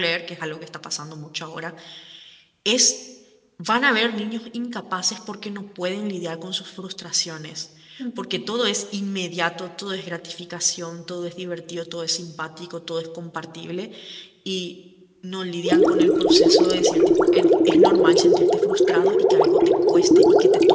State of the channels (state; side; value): identical; both; correlation 1.00